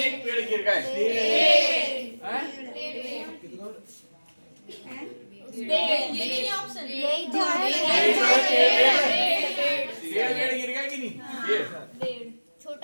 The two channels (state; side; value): inverted; both; correlation -1.00